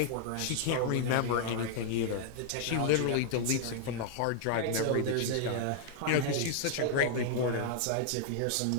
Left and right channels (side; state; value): both; different; correlation -0.01